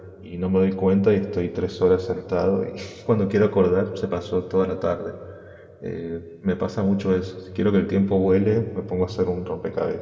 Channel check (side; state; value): both; identical; correlation 1.00